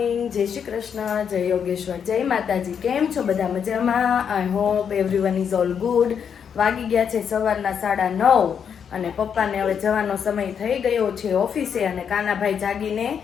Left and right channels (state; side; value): quieter; right; 7.5 dB